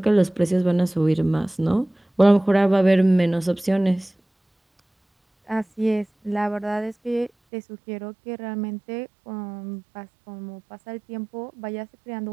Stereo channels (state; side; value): drops out; left; at 7.3 s